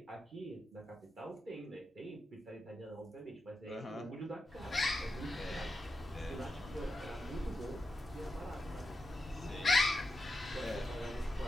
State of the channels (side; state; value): both; normal; correlation 0.88